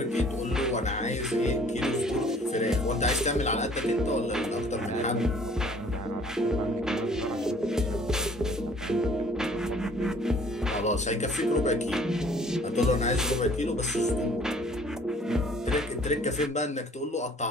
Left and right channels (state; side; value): normal; both; correlation 0.55